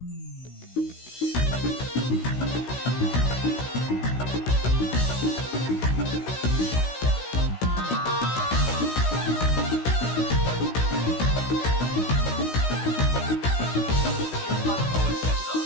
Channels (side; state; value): right; late; 16 ms